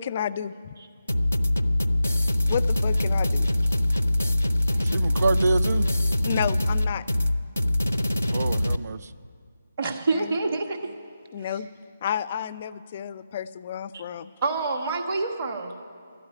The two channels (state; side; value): inverted; both; correlation -0.90